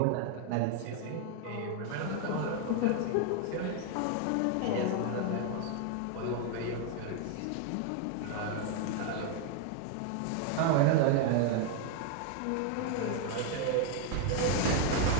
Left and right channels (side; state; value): both; different; correlation 0.00